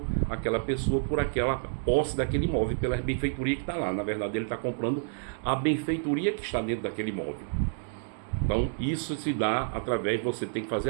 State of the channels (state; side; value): silent; left; digital silence